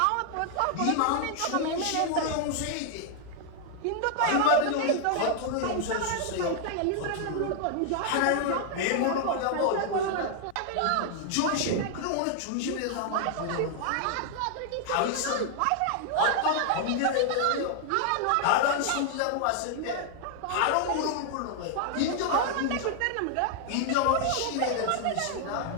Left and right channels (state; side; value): different; both; correlation 0.00